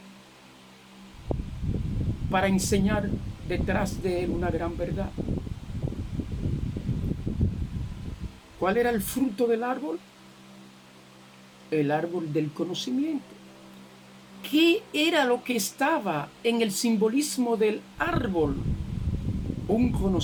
para enseñar detrás de él una gran verdad. ¿Cuál era el fruto del árbol? El árbol del conocimiento. ¿Qué era lo que estaba en el simbolismo del árbol? Un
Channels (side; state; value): both; identical; correlation 1.00